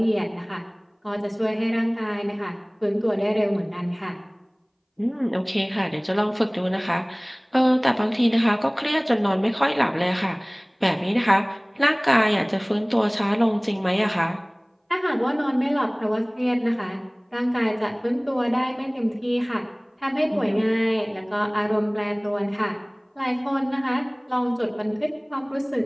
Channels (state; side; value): identical; both; correlation 1.00